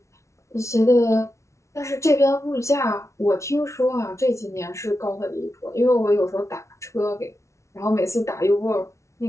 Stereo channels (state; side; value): late; right; 0.14 ms